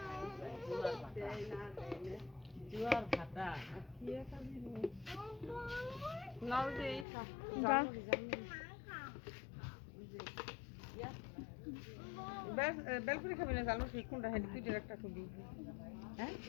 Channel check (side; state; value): right; drops out; at 7.1 s